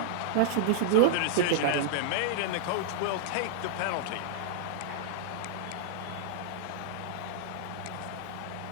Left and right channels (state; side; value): different; both; correlation -0.02